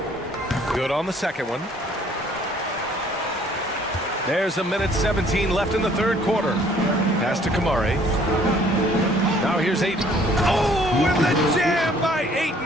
Good on the second one. There's 1:17 left in the third quarter. Pass to Kamari. Now here's Aiden. Oh, and the jam by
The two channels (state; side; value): normal; both; correlation 0.59